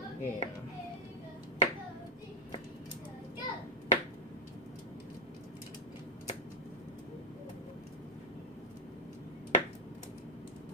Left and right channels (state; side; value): normal; both; correlation 0.01